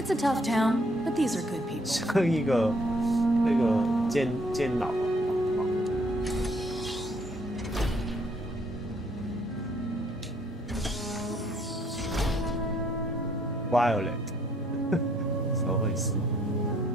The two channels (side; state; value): both; normal; correlation 0.66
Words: a tough town, but these are good people. 像一个那个监牢。Violet， 怎么回事？